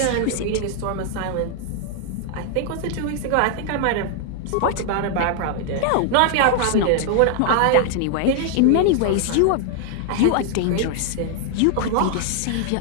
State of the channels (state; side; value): different; both; correlation 0.00